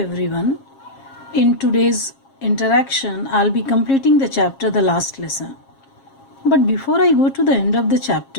In today's interaction, I'll be completing the chapter The Last Lesson. But before I go to the end of the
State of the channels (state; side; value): late; right; 7.4 ms